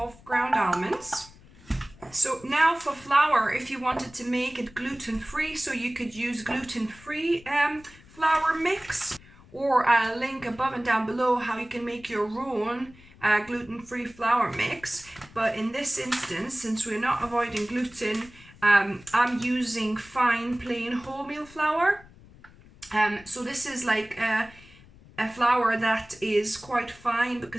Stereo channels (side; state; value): left; noise; rumble, 23 dB below the sound